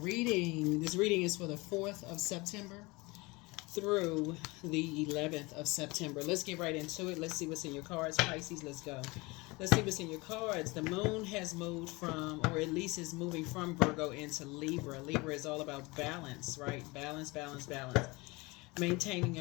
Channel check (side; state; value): right; quieter; 24.2 dB